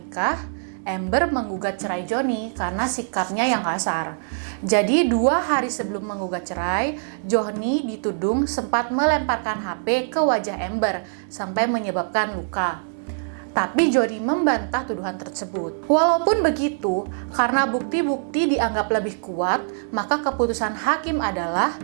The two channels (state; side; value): silent; left; 63 dB below the other